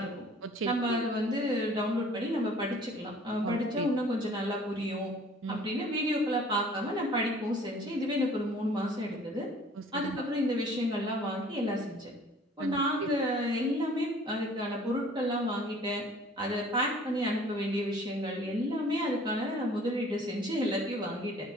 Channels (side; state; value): both; normal; correlation 0.52